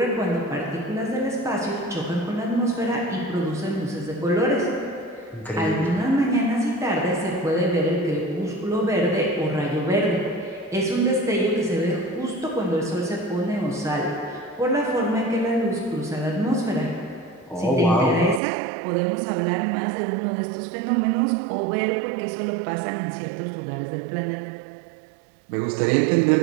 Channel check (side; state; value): left; drops out; at 18.4 s